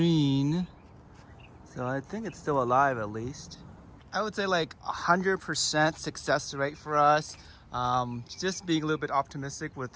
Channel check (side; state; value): both; identical; correlation 1.00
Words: so I think it's still alive at least. I would say like 100% success rate for us. Just being a little bit optimistic